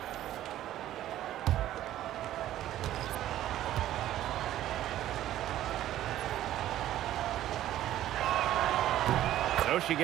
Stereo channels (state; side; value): quieter; left; 13.0 dB